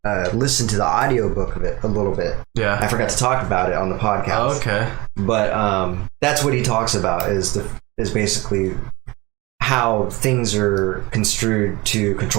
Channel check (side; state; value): left; quieter; 22.8 dB